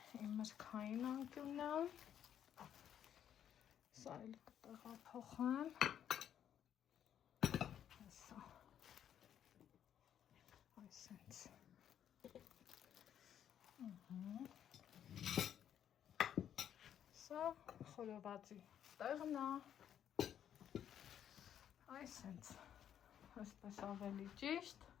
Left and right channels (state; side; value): quieter; right; 9.7 dB